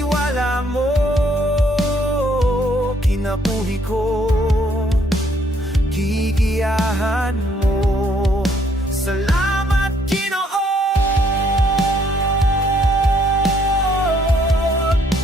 mo, kinabuhi ko gigiyahan mo. Salamat Ginoo,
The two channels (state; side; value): normal; both; correlation 0.67